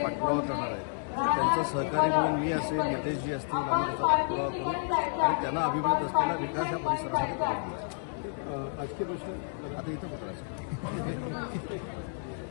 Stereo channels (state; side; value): silent; right; digital silence